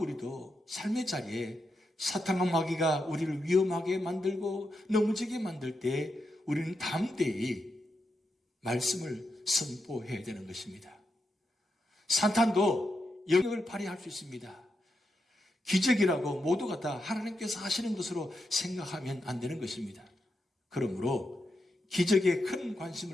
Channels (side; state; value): both; normal; correlation 0.86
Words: 삶의 자리에 사탄과 마귀가 우리를 위험하게 만들고 넘어지게 만들 때 우리는 담대히 말씀을 선포해야 되는 것입니다. 사탄도 영역을 발휘할 수 있습니다. 기적이라고 모두가 다 하나님께서 하시는 것으로 생각하면 안 되는 것입니다. 그러므로 기적에 큰